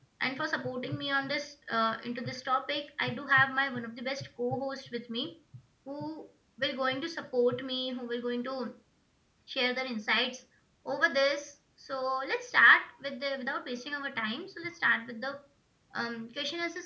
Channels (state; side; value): identical; both; correlation 1.00